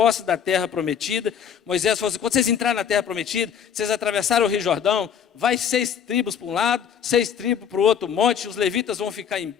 da terra prometida, Moisés falou assim, quando vocês entrarem na terra prometida, vocês atravessaram o Rio Jordão, vai 6 tribos para um lado, 6 tribos para o outro monte, os levitas vão ficar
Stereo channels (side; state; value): right; quieter; 8.1 dB